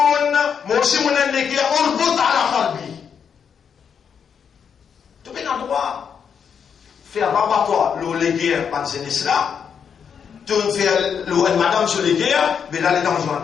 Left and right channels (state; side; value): quieter; right; 7.2 dB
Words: موسى من اللي أربط على قلبي. Tu peux en droit faire rabattoir le légué par ces là. Tu fais le madame sur les guerres, mais là les dents sont en